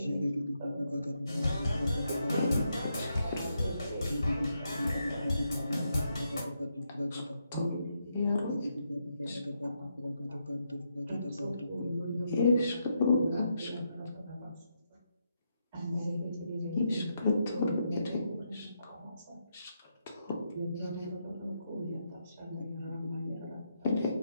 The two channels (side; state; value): both; inverted; correlation -0.81